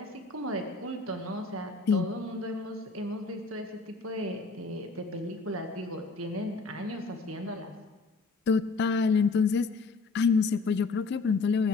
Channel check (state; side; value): quieter; right; 4.1 dB